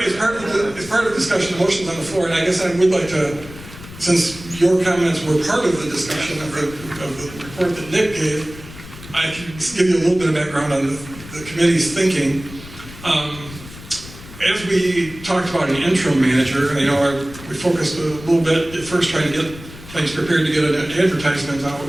the discussion, the motion's on the floor, and I guess I would like to, since your comments were part of the discussion of the report that Nick gave, I can give you a little bit of background on the committee's thinking. As we talked about an interim manager, I know we focused a little bit at first trying to get things prepared to get an advertisement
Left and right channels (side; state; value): left; noise; rumble, 16 dB below the sound